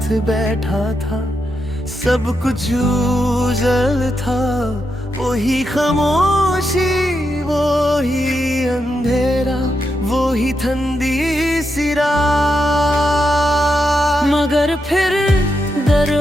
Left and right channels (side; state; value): both; normal; correlation 0.84